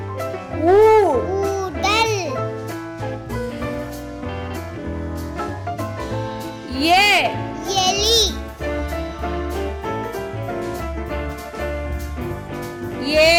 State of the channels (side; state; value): both; identical; correlation 1.00